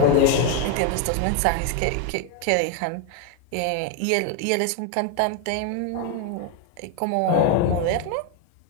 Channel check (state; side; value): different; both; correlation 0.01